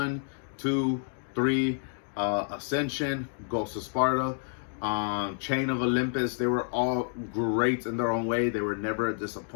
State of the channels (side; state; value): right; silent; digital silence